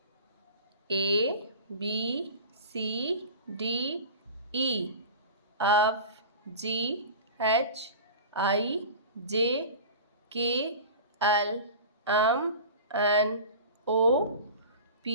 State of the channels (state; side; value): inverted; both; correlation -0.35